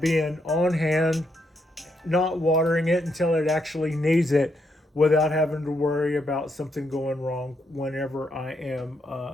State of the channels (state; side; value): normal; both; correlation 0.78